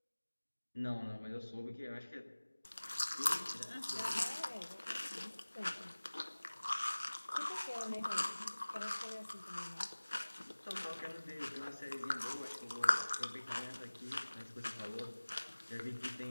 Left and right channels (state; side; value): inverted; both; correlation -1.00